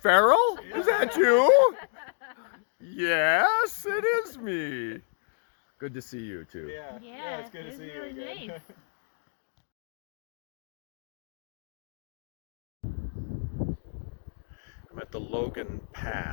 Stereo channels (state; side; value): silent; right; digital silence